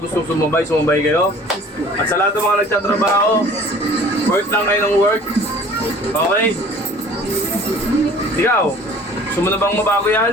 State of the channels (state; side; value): normal; both; correlation 0.49